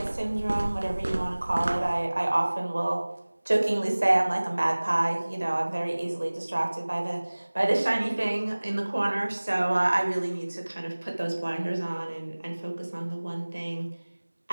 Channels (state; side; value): inverted; both; correlation -1.00